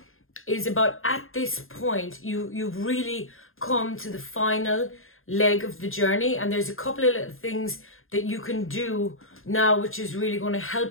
is about, at this point, you've really come to the final leg of the journey, and there's a couple of little things that you can do now which is really going to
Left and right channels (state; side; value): late; right; 0.60 ms